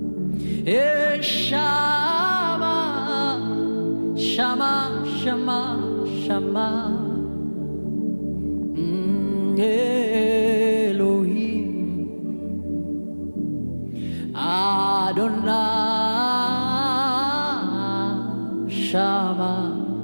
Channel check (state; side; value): inverted; both; correlation -1.00